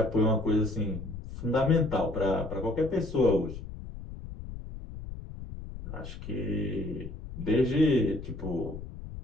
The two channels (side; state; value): left; noise; rumble, 11 dB below the sound